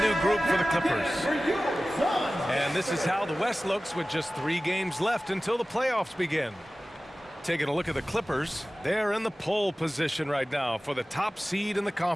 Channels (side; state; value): both; normal; correlation 0.97